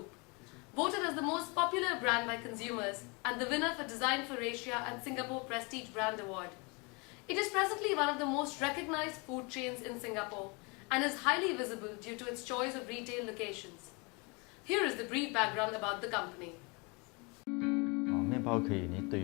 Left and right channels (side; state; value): right; quieter; 28.8 dB